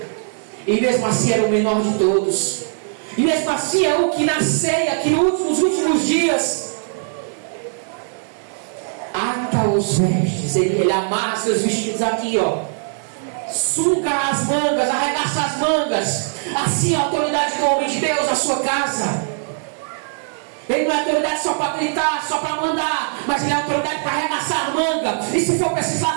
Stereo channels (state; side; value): silent; left; 66 dB below the other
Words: E mesmo assim era o menor de todos. E mesmo assim é o que na ceia, que nos últimos dias ata os vestes. Ele amarra seus vestidos aqui, ó. Suga as mangas, arregaça as mangas. Assim é a autoridade do homem de Deus na sua casa. Ele não é autoridade só para gritar, só para mandar, mas ele é autoridade para arregaçar a manga. E se for preciso